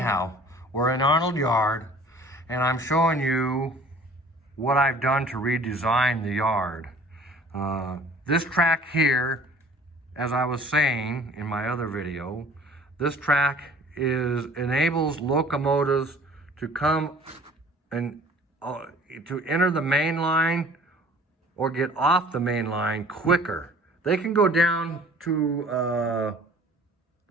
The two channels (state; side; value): normal; both; correlation 0.49